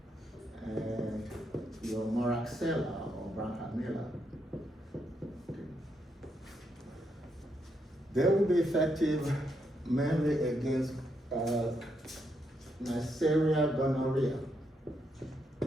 and your Moraxella or Branhamilla, they will be effective mainly against Neisseria gonorrhea.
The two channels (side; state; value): both; normal; correlation 0.79